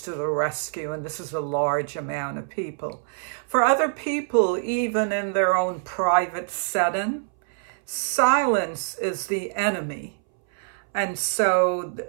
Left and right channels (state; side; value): silent; left; 62 dB below the other